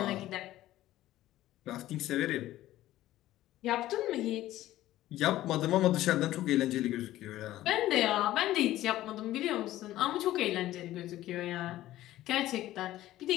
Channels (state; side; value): quieter; right; 14.8 dB